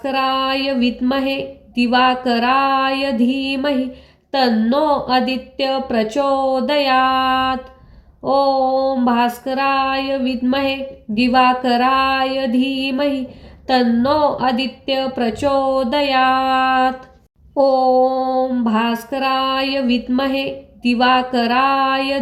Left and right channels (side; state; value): both; identical; correlation 1.00